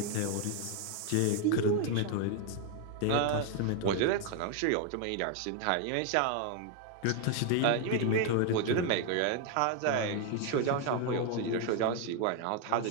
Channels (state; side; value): different; both; correlation 0.01